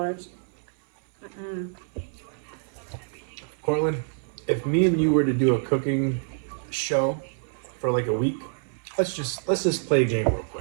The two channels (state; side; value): silent; left; 60 dB below the other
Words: Mm-mm. Cortland, if me and you were to do a cooking show for like a week, let's just play a game real